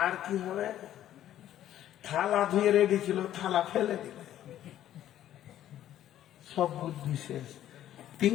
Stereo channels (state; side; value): quieter; right; 12.0 dB